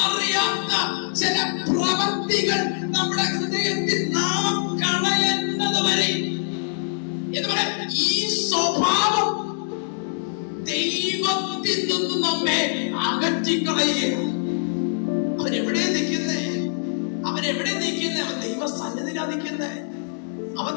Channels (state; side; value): silent; right; digital silence